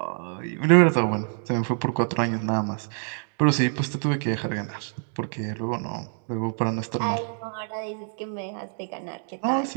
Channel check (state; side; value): silent; left; 61 dB below the other